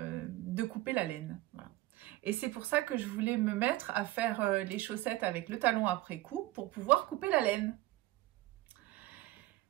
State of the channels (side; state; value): left; quieter; 17.6 dB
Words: couper la laine. Voilà. Et c'est pour ça que je voulais me mettre à faire les chaussettes avec le talon après coup pour pouvoir couper la laine.